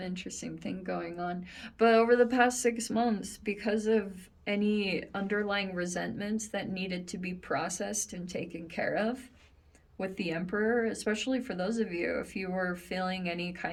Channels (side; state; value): both; identical; correlation 1.00